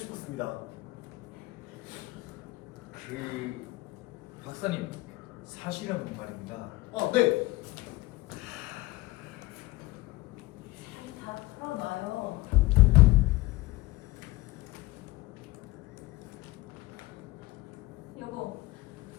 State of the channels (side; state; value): right; quieter; 19.9 dB